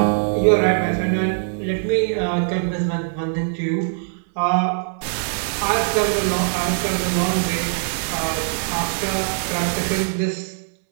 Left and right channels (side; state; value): left; silent; 65 dB below the other